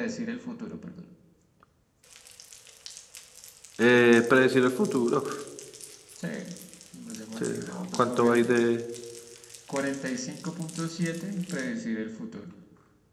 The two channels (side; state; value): both; identical; correlation 1.00